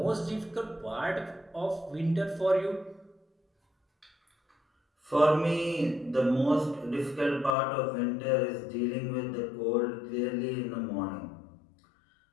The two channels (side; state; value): right; drops out; at 7.6 s